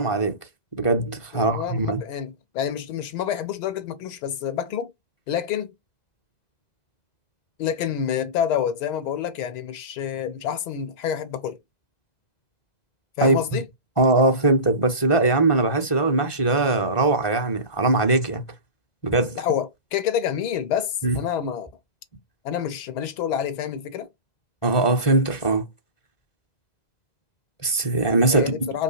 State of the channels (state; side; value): late; right; 1.5 ms